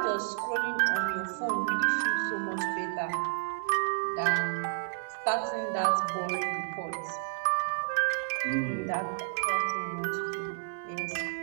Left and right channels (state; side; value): silent; left; 57 dB below the other